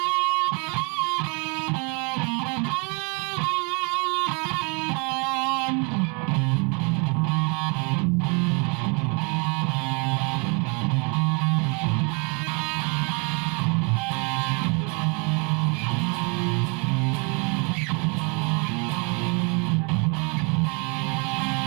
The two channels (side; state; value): left; quieter; 33.1 dB